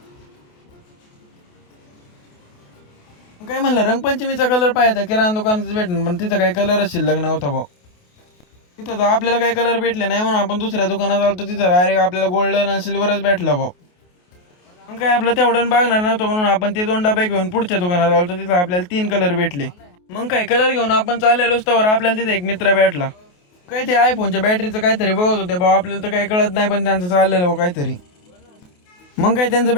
काय म्हणलं रंगपंचमीचा कलर पाहायचा किराणा दुकानातच भेटणार, पण तिथं काही कलरच शिल्लक नव्हता भाऊ. तिथं तर आपल्याला काही कलर भेटले नाही म्हणून आपण दुसऱ्या दुकानात आलो, तिथं डायरेक्ट आपल्याला गोल्डन आणि सिल्वरच भेटला भाऊ. मग काय आपलं तेवढं बघणार नव्हतं म्हणून आपण ते 2 डबे घेऊन पुढच्या दुकानात आलो, तिथं आपल्याला 3 कलर भेटले. मग काय कलर घेऊन आपण चाललेलोच तर आपल्याला तिथे एक मित्र भेटला. काय ते आयफोनच्या बॅटरीचं काहीतरी बघत होते भाऊ, आपल्याला तर काही कळत नाही, पण त्यांचं चाललेलं काहीतरी. मग काय त्यांचं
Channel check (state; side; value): late; right; 28 ms